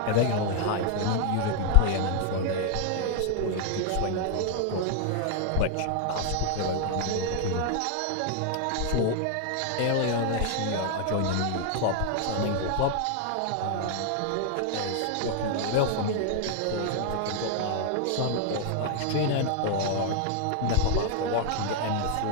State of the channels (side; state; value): both; different; correlation 0.00